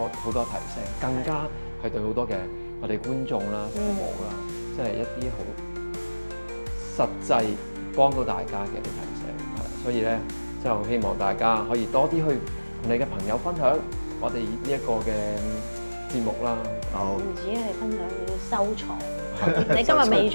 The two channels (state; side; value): inverted; both; correlation -1.00